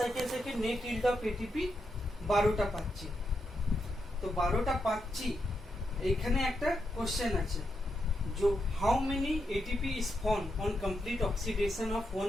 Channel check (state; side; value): normal; both; correlation 0.83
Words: থেকে নেট ইল্ড অফ এটিপি 12টা পাচ্ছি। তো 12টা পাচ্ছি, এখানে একটা কোশ্চেন আছে, जो how many ATP is form on complete oxidation of one